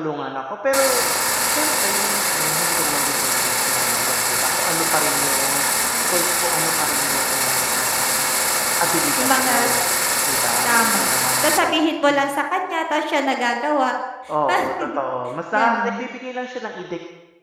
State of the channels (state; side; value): identical; both; correlation 1.00